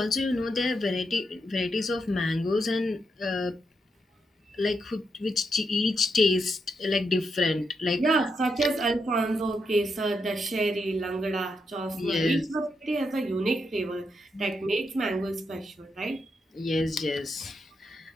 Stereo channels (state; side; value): normal; both; correlation 0.82